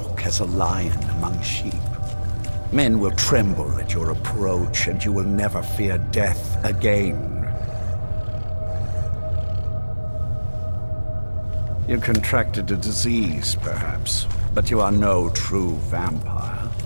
as a lion among sheep. Men will tremble at your approach and you will never fear death again. You contracted a disease, perhaps, but you are no true vampire.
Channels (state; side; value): inverted; both; correlation -1.00